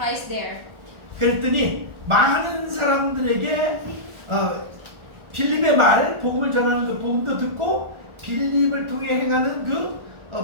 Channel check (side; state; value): left; late; 1.4 ms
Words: there. 그랬더니 많은 사람들에게 빌립의 말, 복음을 전하는 그 복음도 듣고 빌립을 통해 행하는 그